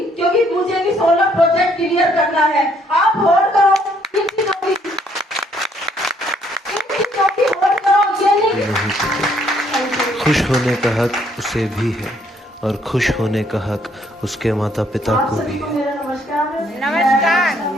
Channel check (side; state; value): both; normal; correlation 0.67